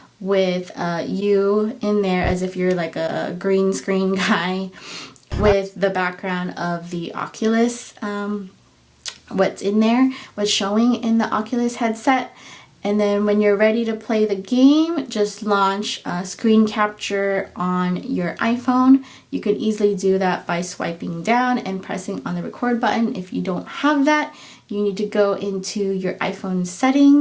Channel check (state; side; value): identical; both; correlation 1.00